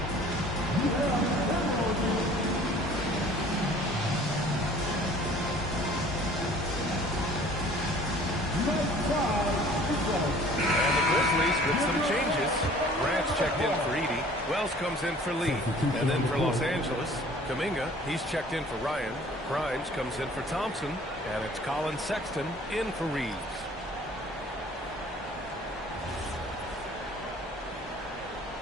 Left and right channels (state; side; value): normal; both; correlation 0.51